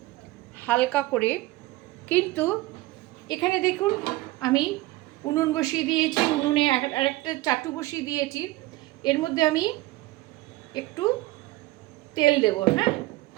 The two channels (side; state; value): left; quieter; 18.6 dB